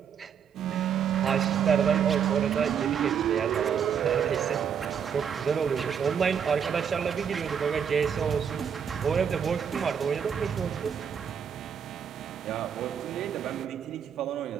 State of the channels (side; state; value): left; quieter; 7.6 dB